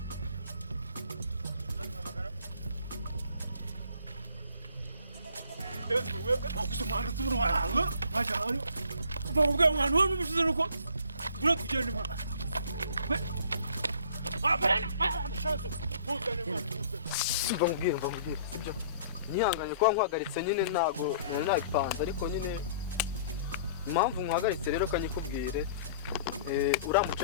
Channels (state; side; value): inverted; both; correlation -0.53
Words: Kusumana tubura waranga. Bajyayo. Bavuga mwana wowe n'ubushize nuko bura tugende mwana. simba mubwire sibyo nihanganye kuba nkwagaritse nyine ntago nari nabipanze ariko nyine impamvu nkwagaritse rero kanyikubwire uriya